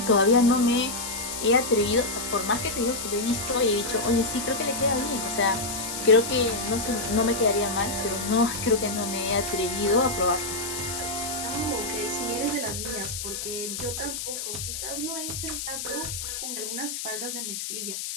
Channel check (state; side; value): noise; left; hiss, 5 dB below the sound